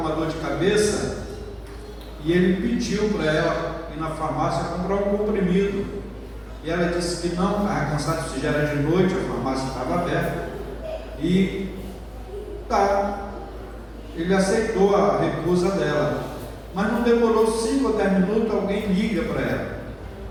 dor de cabeça e ele pediu para ela ir na farmácia comprar um comprimido. E ela disse que não, estava cansado, se já era de noite, a farmácia estava aberta. E ele aceitou a recusa dela. Mas não demorou 5 ou 10 minutos, alguém liga para ela.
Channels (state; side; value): identical; both; correlation 1.00